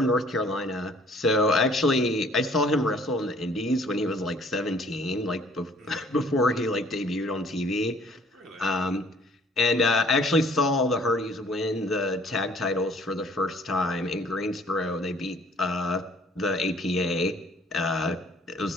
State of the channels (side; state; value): both; normal; correlation 0.57